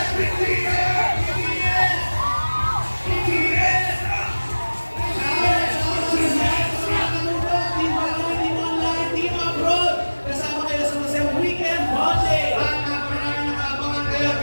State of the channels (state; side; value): inverted; both; correlation -1.00